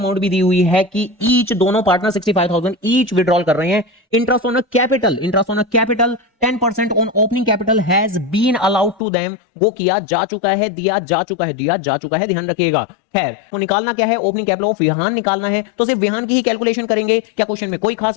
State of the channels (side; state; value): right; drops out; at 9.0 s